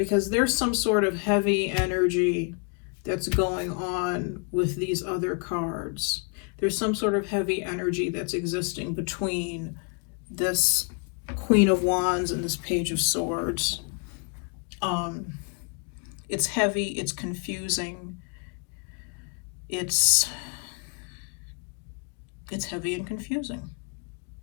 there's some sort of heavy energy that's going on with these other cards. There's some sort of heavy energy that's existing between this Queen of Wands and this Page of Swords. It's heavy, it's confusing, it's heavy and confusing.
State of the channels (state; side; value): quieter; right; 38.0 dB